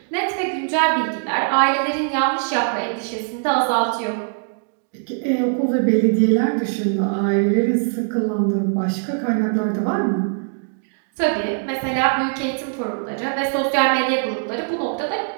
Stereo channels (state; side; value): silent; left; digital silence